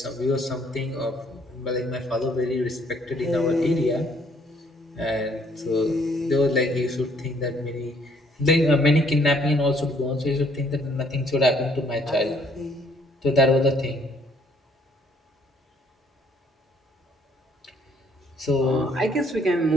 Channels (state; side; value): normal; both; correlation 0.64